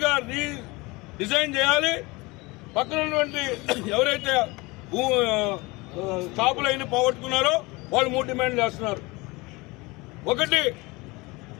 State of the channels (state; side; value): quieter; right; 23.9 dB